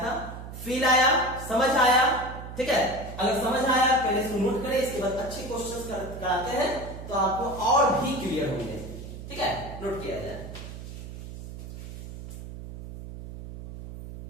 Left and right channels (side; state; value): right; noise; hum, 11 dB below the sound